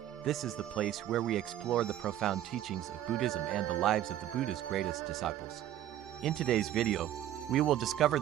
This is the place where we explore the profound teachings of Buddhism and the lives of the Buddha's greatest disciples. In today's video, we will discover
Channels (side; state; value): left; quieter; 12.2 dB